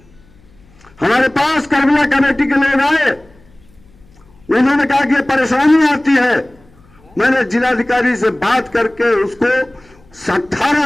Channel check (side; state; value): left; noise; hum, 29 dB below the sound